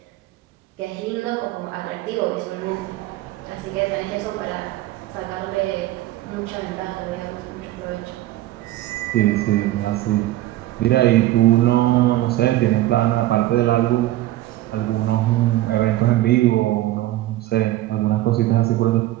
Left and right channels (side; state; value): left; quieter; 15.5 dB